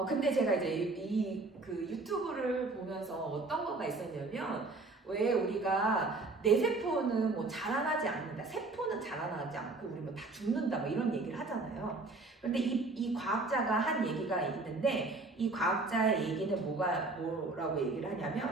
근데 제가 이제 그 유튜브를 보면서 어떤 거가 있었냐면, 왜 우리가 내 세포는 뭐 자라나지 않는다, 세포는 자라나지 않고 우리 뭐 다 죽는다, 뭐 이런 얘기를 하잖아요. 그런데 이 과학자가 한 얘기가 있는데, 이 과학자의 얘기는 뭐라고 얘기를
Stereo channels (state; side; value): quieter; left; 3.4 dB